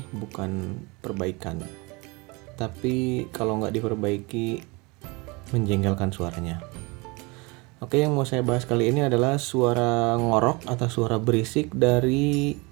bukan perbaikan. Tapi kalau nggak diperbaiki, menjengkelkan suaranya. Oke, yang mau saya bahas kali ini adalah suara ngorok atau suara berisik dari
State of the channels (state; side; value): quieter; left; 26.8 dB